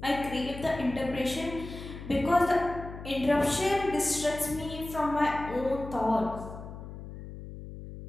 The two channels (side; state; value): left; noise; hum, 12 dB below the sound